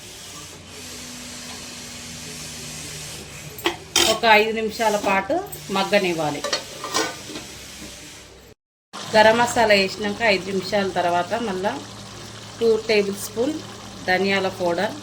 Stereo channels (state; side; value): identical; both; correlation 1.00